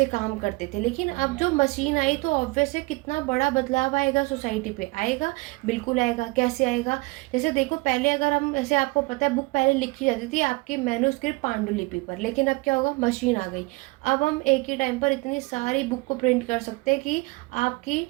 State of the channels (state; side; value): quieter; left; 25.3 dB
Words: काम करते थे। लेकिन अब जो मशीन आई तो ऑब्वियस है कितना बड़ा बदलाव आएगा सोसाइटी पे, आएगा, बिल्कुल आएगा। कैसे आएगा? जैसे देखो, पहले अगर हम, ऐसे आपको पता है, बुक पहले लिखी जाती थी आपकी मैन्युस्क्रिप्ट पांडुलिपि पर, लेकिन अब क्या होगा, मशीन आ गई। अब हम एक ही टाइम पर इतनी सारी बुक को प्रिंट कर सकते हैं कि आपकी